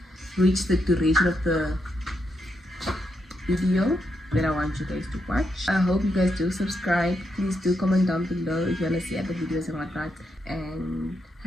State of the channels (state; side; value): normal; both; correlation 0.81